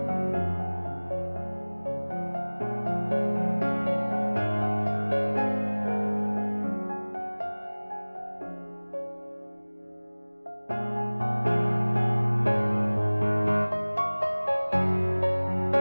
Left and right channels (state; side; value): inverted; both; correlation -1.00